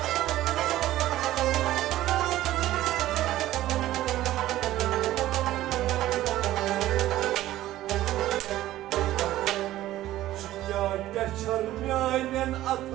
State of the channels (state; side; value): quieter; left; 14.7 dB